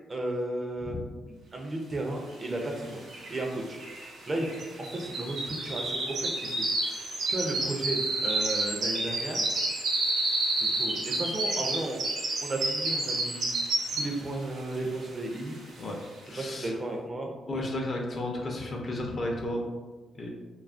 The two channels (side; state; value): both; normal; correlation 0.76